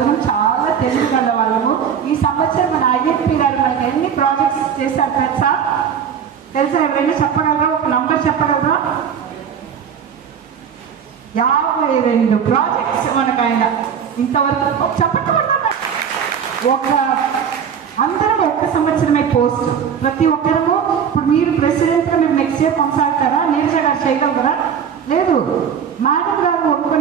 చాలా తెలియగల వాళ్ళము. ఈ సంవత్సరం మన ఐడెంటిటీ గారు మనకి ఎన్ని ప్రాజెక్ట్స్ చేశారు తెలుసా? ఎవరైనా చెప్పగలరా? ఒక నంబర్ చెప్పగలరా? 52 ప్రాజెక్ట్స్ మనకు ఆయన ఇంతవరకు చెప్పట్టుకున్నారు. అందరం ఒక్క సంవత్సరమే పోస్ట్. ప్రతి ఒక్కరము ఇప్పుడు మీరు ప్రెసిడెంట్గా మీరు నెక్స్ట్ ఇయర్ కొనసాగుతారా? నీరజ గారు చేయగలరా? లేదు. మేడం గారు ఒక్క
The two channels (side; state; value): left; quieter; 7.7 dB